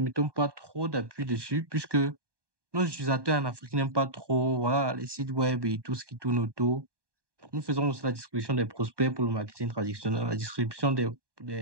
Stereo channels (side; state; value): left; late; 1.2 ms